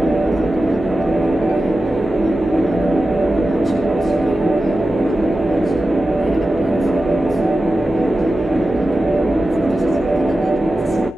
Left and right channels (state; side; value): normal; both; correlation 0.93